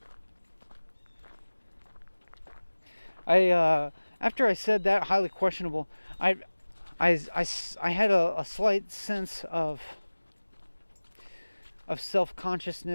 After I said that, highly questionable, I had a slight sense of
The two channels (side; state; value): both; inverted; correlation -1.00